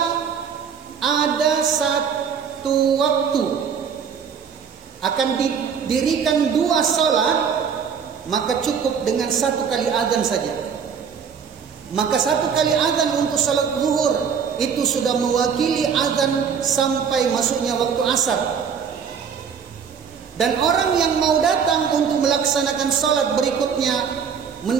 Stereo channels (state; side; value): quieter; left; 6.9 dB